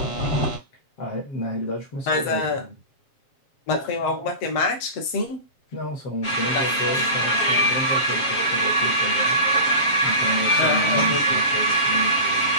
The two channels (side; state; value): right; late; 7.4 ms